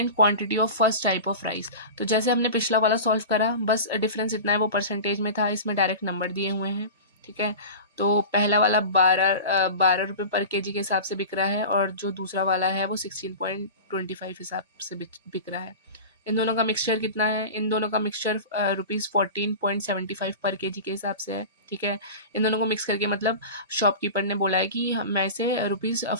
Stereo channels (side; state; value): both; inverted; correlation -0.31